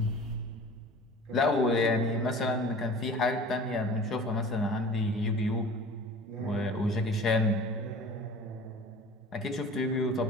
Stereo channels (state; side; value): normal; both; correlation 0.41